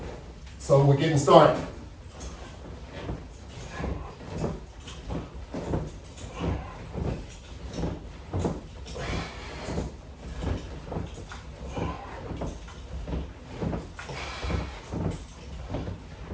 So we're getting started.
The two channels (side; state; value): both; identical; correlation 1.00